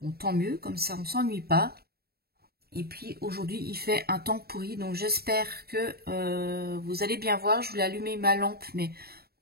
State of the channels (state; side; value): late; left; 0.45 ms